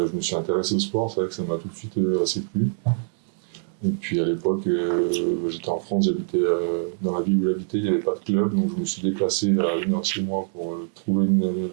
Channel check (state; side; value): silent; left; digital silence